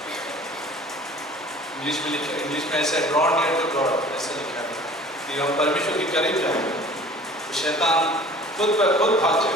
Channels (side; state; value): both; normal; correlation 0.46